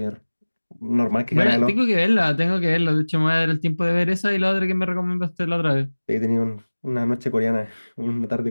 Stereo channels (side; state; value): both; inverted; correlation -1.00